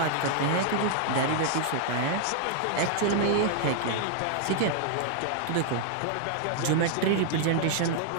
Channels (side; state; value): both; different; correlation -0.01